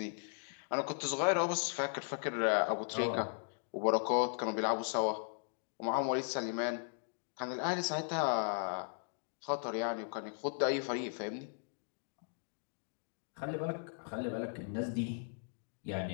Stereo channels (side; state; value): right; silent; digital silence